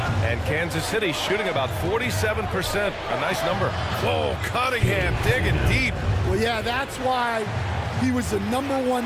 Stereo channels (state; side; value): identical; both; correlation 1.00